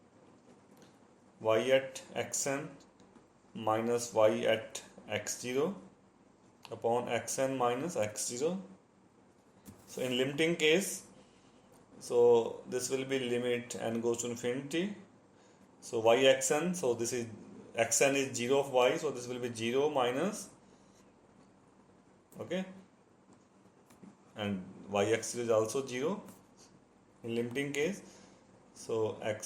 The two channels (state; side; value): identical; both; correlation 1.00